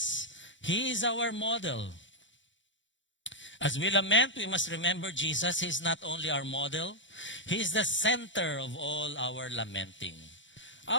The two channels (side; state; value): right; late; 0.54 ms